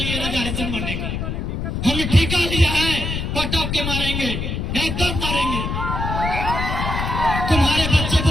रिजर्वेशन बनने का, हमने ठेका लिया है, पटक के मारेंगे, एकदम मारेंगे। तुम्हारे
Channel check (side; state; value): left; noise; rumble, 2 dB below the sound